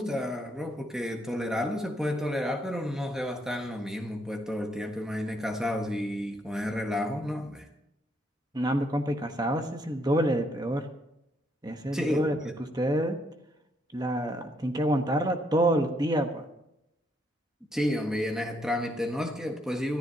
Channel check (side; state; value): both; normal; correlation 0.73